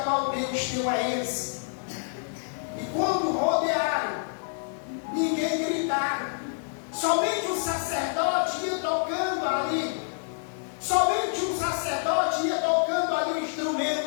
Deus deu a eles. E quando rodearam, ninguém gritaram. Somente o sacerdote ia tocando ali. Somente o sacerdote ia tocando ali o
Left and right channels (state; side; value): silent; right; digital silence